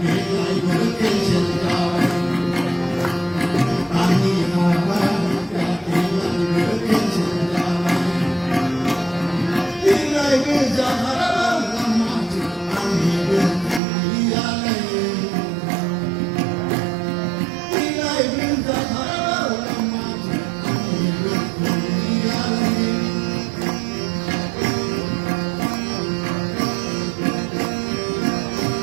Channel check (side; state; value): left; drops out; at 13.8 s